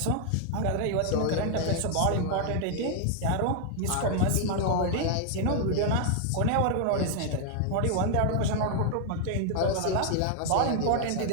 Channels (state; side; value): different; both; correlation 0.00